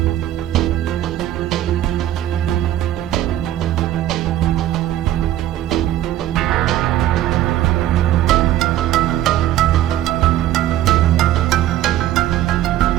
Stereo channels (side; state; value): left; quieter; 13.1 dB